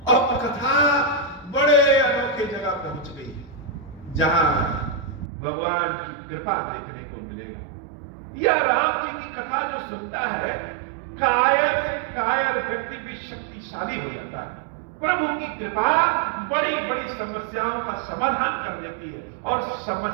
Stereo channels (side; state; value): left; drops out; at 5.2 s